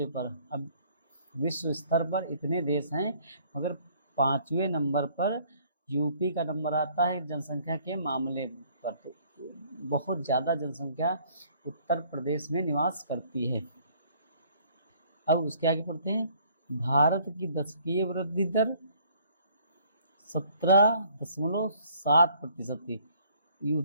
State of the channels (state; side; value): inverted; both; correlation -0.60